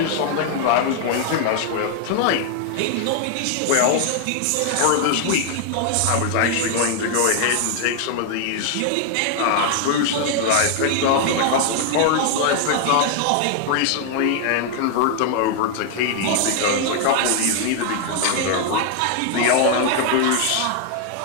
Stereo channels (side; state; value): both; different; correlation 0.00